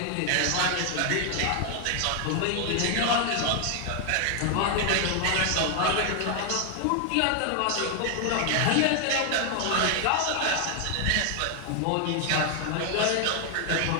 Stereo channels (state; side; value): different; both; correlation 0.00